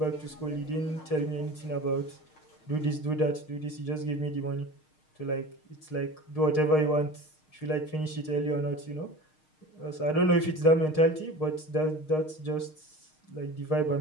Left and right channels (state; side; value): late; right; 6.5 ms